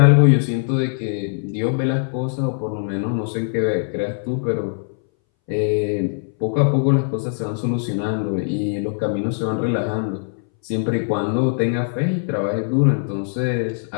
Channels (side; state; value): right; silent; 62 dB below the other